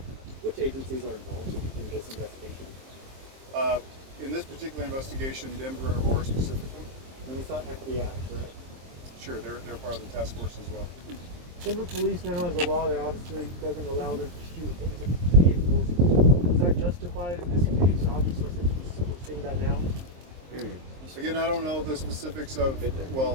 Which agencies are involved in this investigation? In this particular investigation, Denver and Aurora specifically. And it's not FBI, correct? Sure, they're part of the task force as well. Denver police now has a law that obviously doesn't allow them to shoot into vehicles. Is that justified in this case? Obviously, since we're seeing that now. Again, I don't know the specifics of,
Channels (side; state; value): left; late; 23 ms